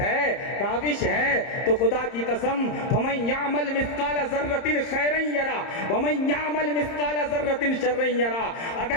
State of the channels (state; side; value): late; right; 30 ms